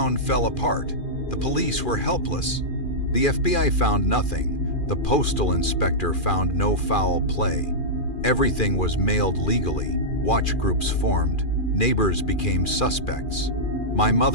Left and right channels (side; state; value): right; late; 2.4 ms